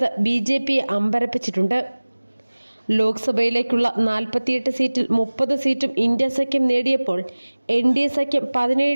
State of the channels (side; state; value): both; inverted; correlation -1.00